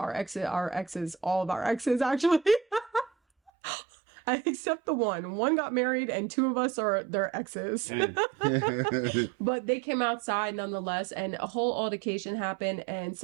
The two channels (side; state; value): left; drops out; at 3.5 s